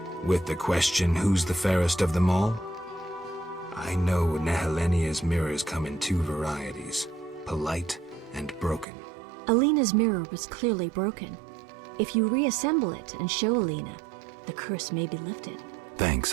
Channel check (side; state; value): left; drops out; at 8.8 s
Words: With the question, who's the fairest of them all? I know Nehelenia's mirrors come in two varieties, polite and broken. Alina's mirror was clearly broken. If you reassemble it and show Alina, the curse may be lifted.